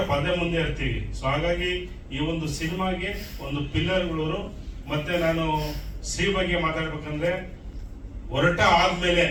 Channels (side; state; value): both; identical; correlation 1.00